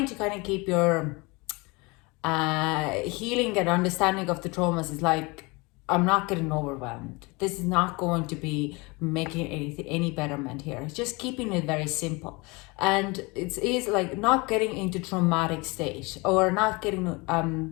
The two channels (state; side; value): quieter; right; 26.3 dB